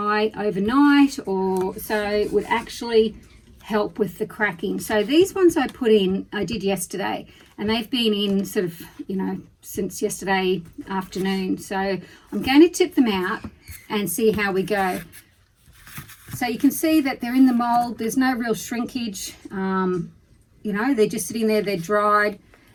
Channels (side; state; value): both; identical; correlation 1.00